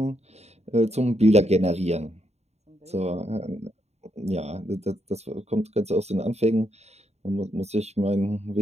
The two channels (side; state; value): left; late; 0.31 ms